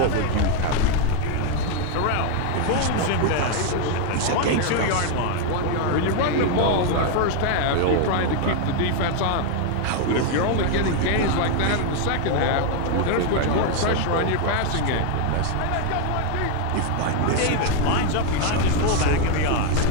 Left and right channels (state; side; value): different; both; correlation 0.00